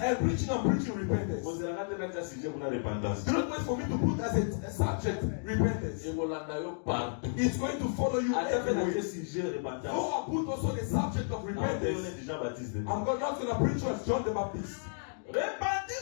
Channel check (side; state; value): right; silent; digital silence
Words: I'm preaching repentance. On se la rate dans sujet pour la repentance. Do not wait for me to put as a subject repentance. Et voilà, d'ailleurs, partout. It's going to follow you À travers everywhere. le sujet repentance. Though I put also the subject of On est repentance, déjà baptisé. I'm not going to preach as John the Baptist.